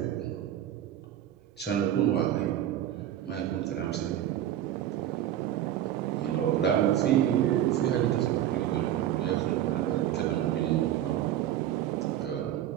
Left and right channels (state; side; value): quieter; left; 11.7 dB